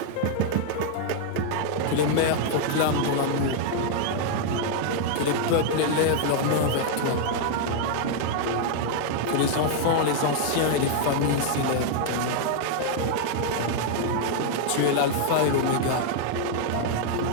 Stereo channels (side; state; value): both; different; correlation 0.00